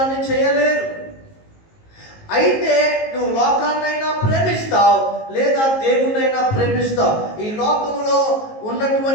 చేయలేరు. అయితే నువ్వు లోకాన్నైనా ప్రేమిస్తావు, లేదా దేవుణ్ణైనా ప్రేమిస్తావు. ఈ లోకంలో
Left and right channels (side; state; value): right; late; 19 ms